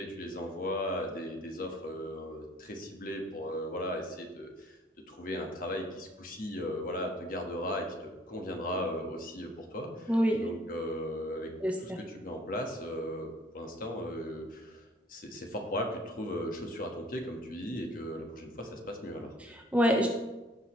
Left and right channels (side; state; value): both; normal; correlation 0.56